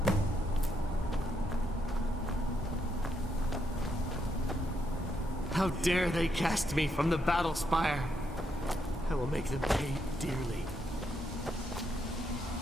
How dare they cast me from the battle spire? I will make them pay dearly.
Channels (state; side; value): normal; both; correlation 0.78